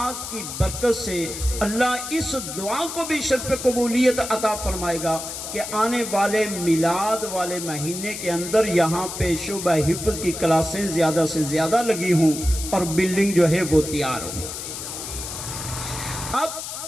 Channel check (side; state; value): left; noise; hiss, 7 dB below the sound